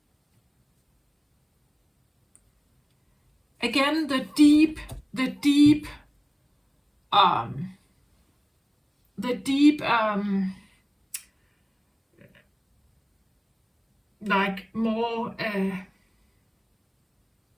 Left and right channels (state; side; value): identical; both; correlation 1.00